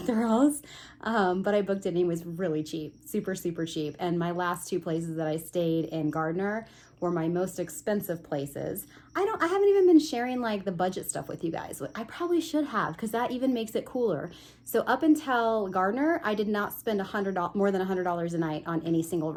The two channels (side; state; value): both; identical; correlation 1.00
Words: But I booked it and it was really cheap, super, super cheap. And my last two places that I stayed in Gardner were my most expensive places. I haven't even been sharing like the budget stuff with you guys. I probably should have, because that even makes it cooler. So up until Gardner, I did not spend more than $100 a night on any single